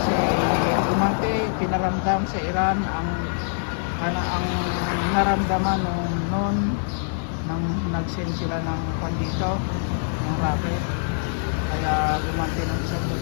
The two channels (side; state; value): right; silent; digital silence